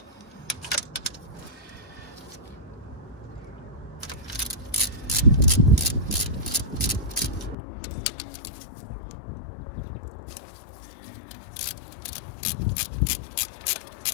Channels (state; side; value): drops out; right; at 7.6 s